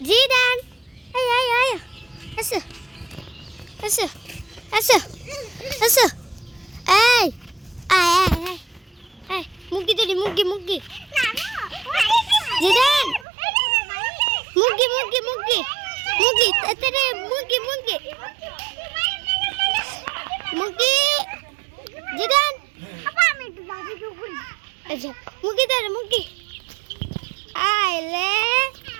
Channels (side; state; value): left; drops out; at 13.2 s